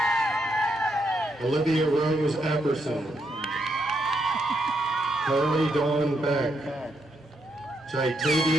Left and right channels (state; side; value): normal; both; correlation 0.78